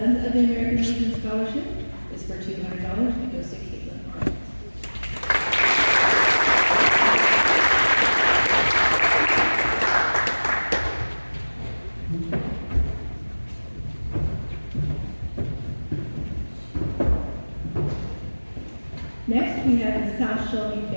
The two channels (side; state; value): both; inverted; correlation -1.00